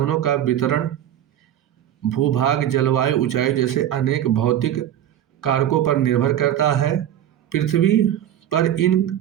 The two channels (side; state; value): left; quieter; 11.2 dB